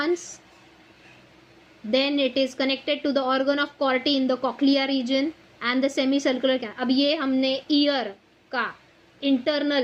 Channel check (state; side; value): identical; both; correlation 1.00